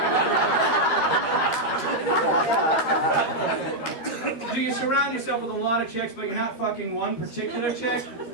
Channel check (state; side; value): late; right; 12 ms